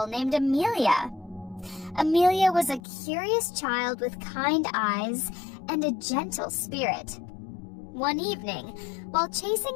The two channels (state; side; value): drops out; right; at 2.8 s